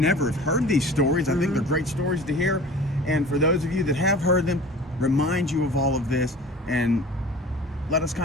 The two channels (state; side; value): normal; both; correlation 0.41